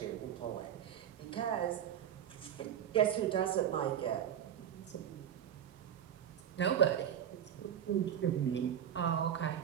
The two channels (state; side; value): quieter; left; 9.5 dB